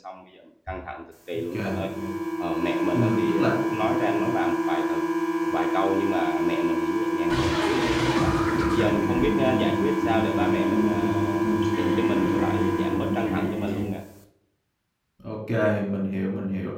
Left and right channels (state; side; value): identical; both; correlation 1.00